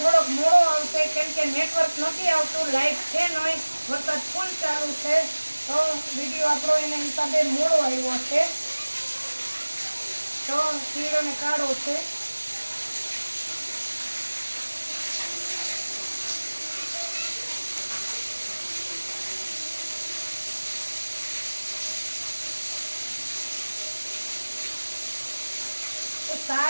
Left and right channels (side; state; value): both; inverted; correlation -1.00